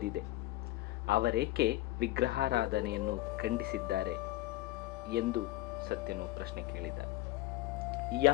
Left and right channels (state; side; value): quieter; right; 17.8 dB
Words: ಅವರೇಕೆ ವಿಗ್ರಹಾರಾಧನೆಯನ್ನು ಖಂಡಿಸಿದ್ದಾರೆ ಎಂದು ಸತ್ಯನು ಪ್ರಶ್ನೆ ಕೇಳಿದ.